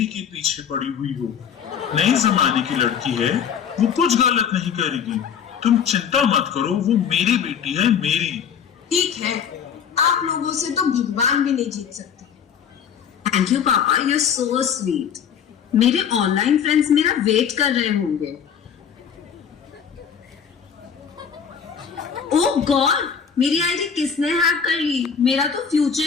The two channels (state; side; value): quieter; right; 7.5 dB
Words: के पीछे पड़ी हुई हो। नई जमाने की लड़की है, वो कुछ गलत नहीं करेगी। तुम चिंता मत करो, वो मेरी बेटी है, मेरी। ठीक है, आप लोगों से तो भगवान भी नहीं जीत सकते। थैंक यू पापा, यू सो स्वीट। मेरे ऑनलाइन फ्रेंड्स मेरा वेट कर रहे होंगे। ओह गॉड, मेरी आईडी किसने हैक कर ली? मेरा तो फ्यूचर